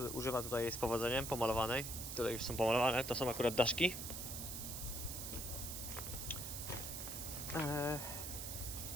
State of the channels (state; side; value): noise; right; hiss, 5 dB below the sound